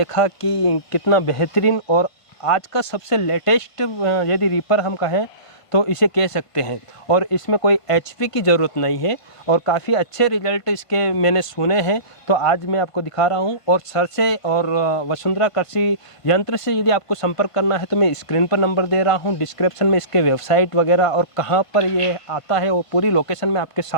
कि कितना बेहतरीन और आज का सबसे लेटेस्ट यदि रीपर हम कहें तो इसे कह सकते हैं और इसमें कोई एचपी की ज़रूरत नहीं है और काफ़ी अच्छे रिजल्ट इसके मैंने सुने हैं। तो आज मैं आपको दिखा रहा हूं और सर से और वसुंधरा कृषि यंत्र से यदि आपको संपर्क करना है तो मैं स्क्रीन पर नंबर दे रहा हूं, डिस्क्रिप्शन में इसके वेबसाइट वगैरह और कहां पर ये आता है वो पूरी लोकेशन मैं आपके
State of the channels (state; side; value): late; right; 1.5 ms